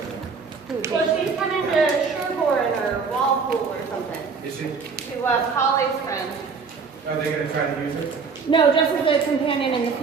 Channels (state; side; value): quieter; left; 5.2 dB